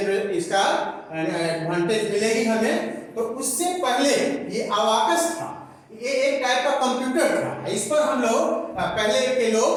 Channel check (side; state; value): both; identical; correlation 1.00